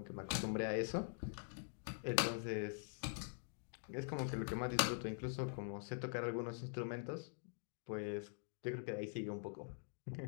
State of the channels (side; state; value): right; silent; digital silence